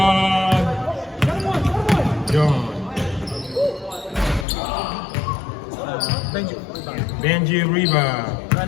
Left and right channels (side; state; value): right; drops out; at 4.5 s